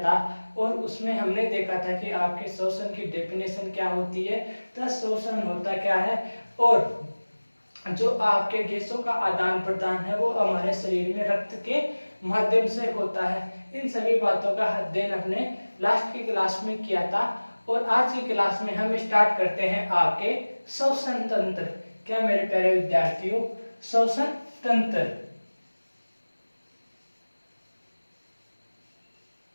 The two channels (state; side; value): inverted; both; correlation -1.00